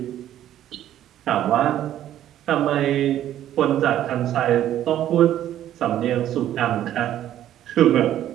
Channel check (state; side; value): quieter; left; 11.9 dB